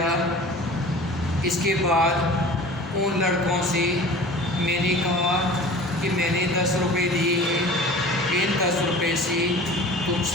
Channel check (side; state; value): both; normal; correlation 0.41